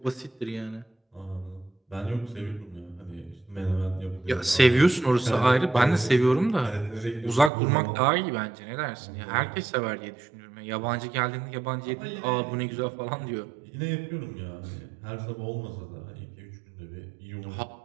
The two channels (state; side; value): drops out; left; at 7.5 s